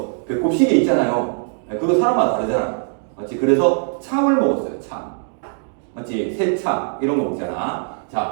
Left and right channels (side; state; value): left; silent; 62 dB below the other